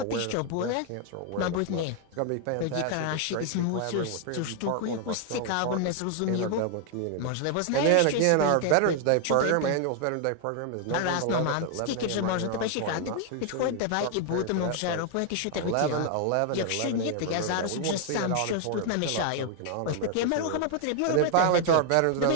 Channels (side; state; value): both; different; correlation 0.00